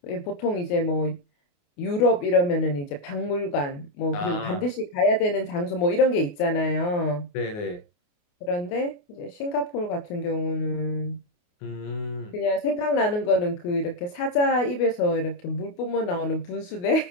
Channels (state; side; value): late; right; 28 ms